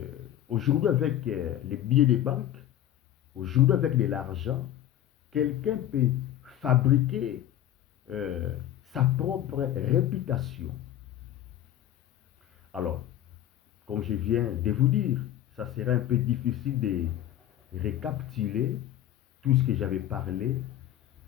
aujourd'hui avec les billets des banques, aujourd'hui avec de l'argent, quelqu'un peut fabriquer sa propre réputation. Alors, comme je viens de vous dire, ça serait un peu difficile de récapituler tout ce que j'avais parlé,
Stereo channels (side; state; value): right; quieter; 12.2 dB